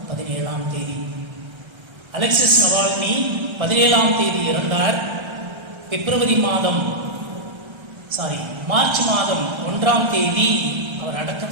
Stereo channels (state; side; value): late; left; 1.3 ms